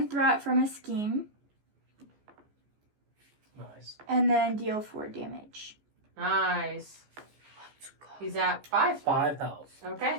threat from a scheme, Nice. and then deal 4 damage. Nice. He's at 5. 5 health.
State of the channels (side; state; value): left; late; 14 ms